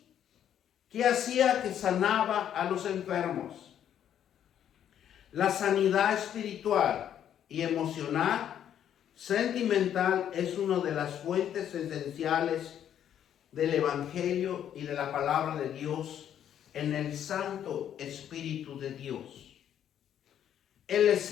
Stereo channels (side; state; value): right; quieter; 9.9 dB